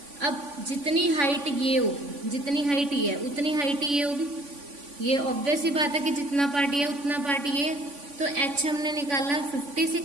अब जितनी हाइट ये होगी, जितनी हाइट ये है उतनी हाइट ये होगी. ये ऑब्वियस ही बात है कि जितना पार्ट ये उतना पार्ट ये. तो H हमने निकाला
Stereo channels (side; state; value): left; late; 3.5 ms